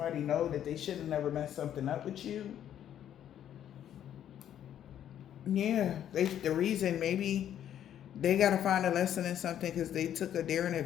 know that they should have never messed something up with you. Yeah, the reason maybe they got to find a lesson in something because they took a daring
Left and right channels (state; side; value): quieter; right; 10.4 dB